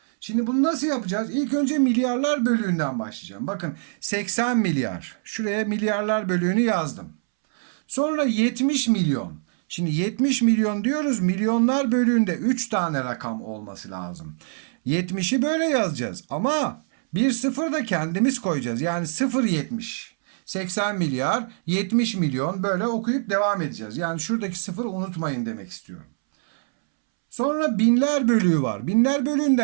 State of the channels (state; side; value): silent; left; 63 dB below the other